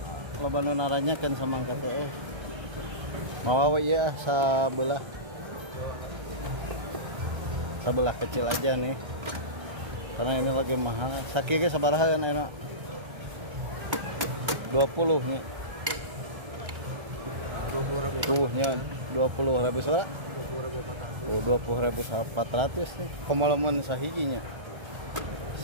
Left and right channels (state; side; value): late; left; 1.3 ms